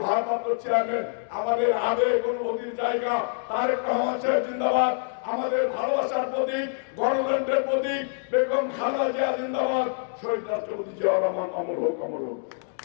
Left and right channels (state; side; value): silent; right; digital silence